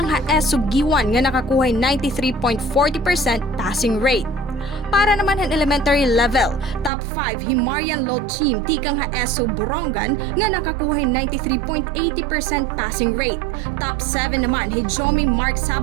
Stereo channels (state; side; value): drops out; left; at 6.9 s